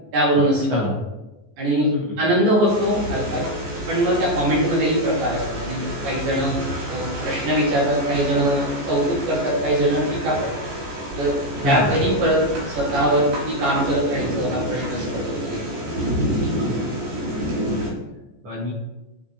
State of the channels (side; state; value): left; late; 14 ms